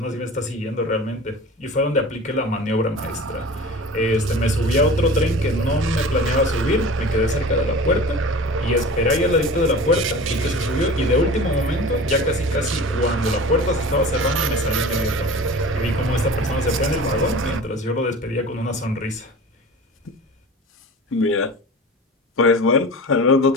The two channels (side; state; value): both; normal; correlation 0.37